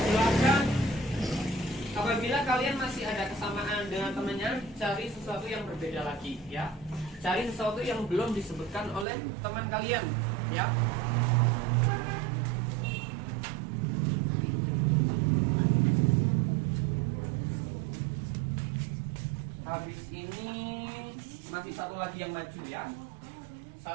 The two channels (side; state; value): left; drops out; at 9.1 s